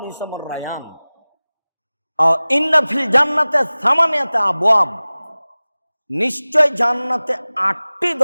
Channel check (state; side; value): inverted; both; correlation -0.99